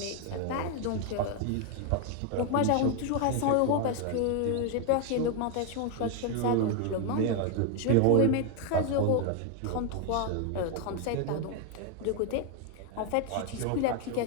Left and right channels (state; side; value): different; both; correlation 0.01